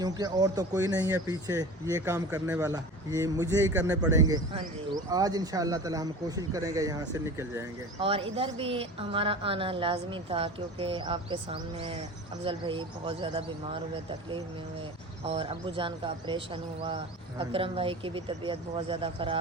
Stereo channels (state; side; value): normal; both; correlation 0.35